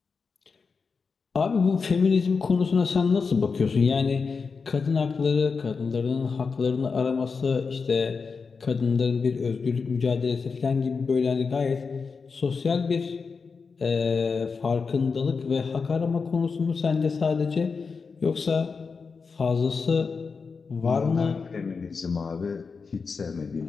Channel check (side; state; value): right; quieter; 5.0 dB